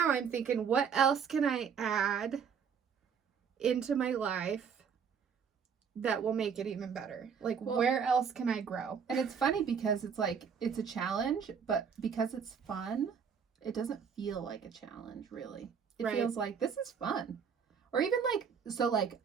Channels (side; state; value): left; quieter; 6.8 dB